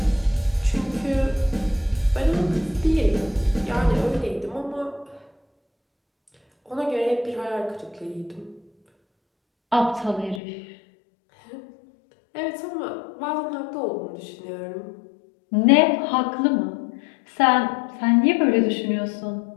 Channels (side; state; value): right; drops out; at 10.4 s